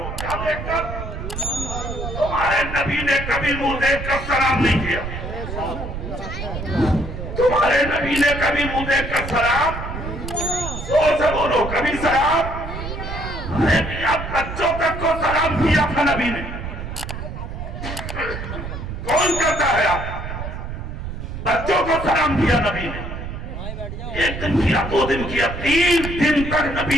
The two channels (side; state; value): right; noise; rumble, 7 dB below the sound